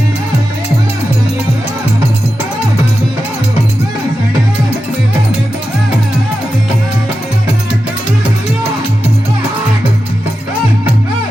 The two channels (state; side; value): normal; both; correlation 0.91